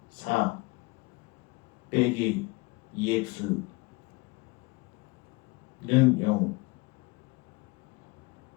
4 빼기 2x는 0.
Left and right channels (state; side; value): quieter; right; 26.1 dB